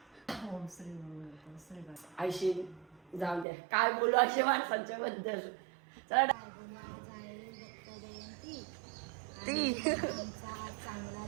आयशी जाऊ द्या, काय बोलू असे माणसांच्या बद्दल. चला ती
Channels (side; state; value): left; drops out; at 3.5 s